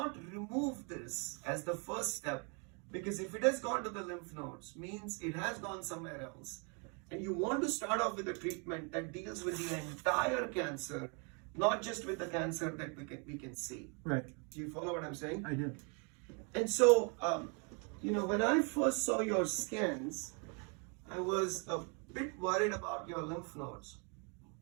remove this as the first step, because if it has gone to the lymph nodes, means it has gone somewhere else. And you want to start off with a treatment that deals with the entire cancer, not just with the cancer that we can see. Right. Do you follow what I'm saying? I do. And so, when I first saw your scans, I was a bit worried about your lymph nodes.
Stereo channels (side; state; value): left; quieter; 35.9 dB